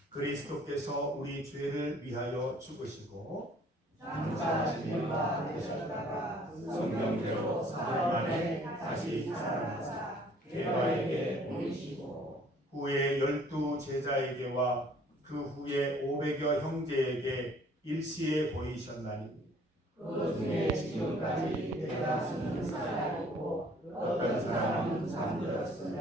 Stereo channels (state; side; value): normal; both; correlation 0.57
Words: 그리스도께서 우리 죄를 위하여 죽으시고 장사하신 바 되셨다가 성경대로 사흘 만에 다시 살아나사 게바에게 보이시고 후에 12 제자에게와 그 후에 500여 형제에게 일시에 보이셨나니 그 중에 지금까지 대다수는 살아있고 어떤 사람은